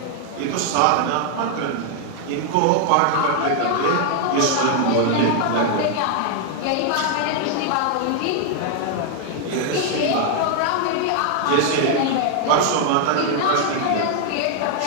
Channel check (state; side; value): different; both; correlation 0.00